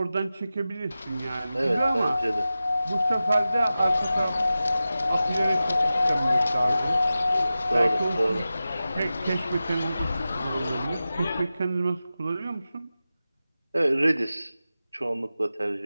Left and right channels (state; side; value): inverted; both; correlation -0.94